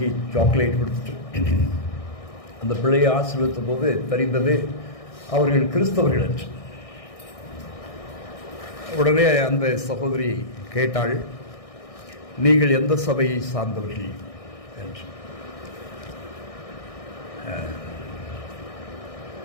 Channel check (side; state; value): right; late; 1.6 ms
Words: சாக்லேட் கொடுத்துட்டு அந்த பிள்ளையை ஆசீர்வதித்த போது தெரிந்தது அவர்கள் கிறிஸ்தவர்கள் என்று. உடனே அந்த சகோதரி கேட்டாள், நீங்கள் எந்த சபையை சார்ந்தவர்கள் என்று.